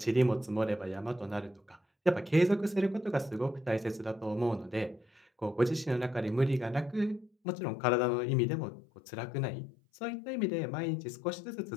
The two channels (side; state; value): right; drops out; at 7.3 s